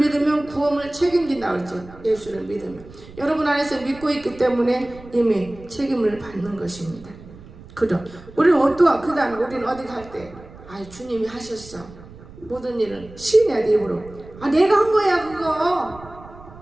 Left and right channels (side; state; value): right; noise; rumble, 19 dB below the sound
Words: 구원을 책임진다고 그러죠. 예수를 믿으면 여러분 안에서 믿고 있기 때문에 이미 책임을 받는 것입니다. 그럼 우리는 어떠한 그 다음에 우리는 어디 갈 때 주님이 하셨어. 모든 일은 시인해야 돼. 입으로 내가 한 거야